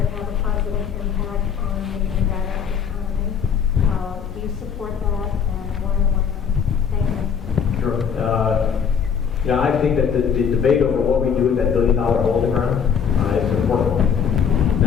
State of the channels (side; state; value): right; quieter; 7.2 dB